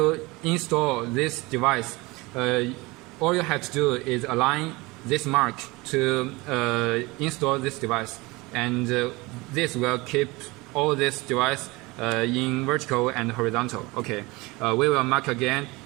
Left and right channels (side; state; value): left; quieter; 23.3 dB